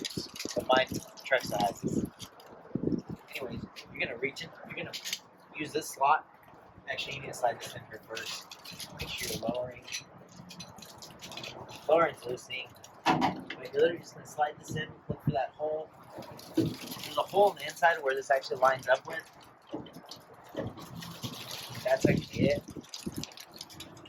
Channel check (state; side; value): identical; both; correlation 1.00